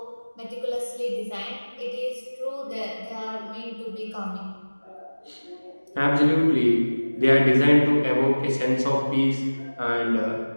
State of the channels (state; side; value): inverted; both; correlation -1.00